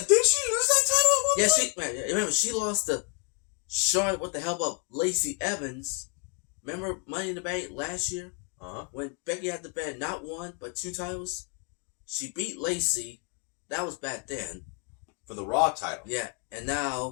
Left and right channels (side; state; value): right; quieter; 38.6 dB